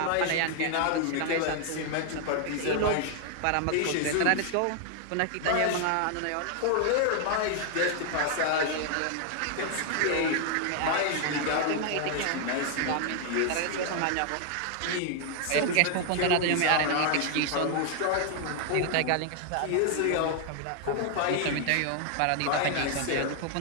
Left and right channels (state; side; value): different; both; correlation 0.00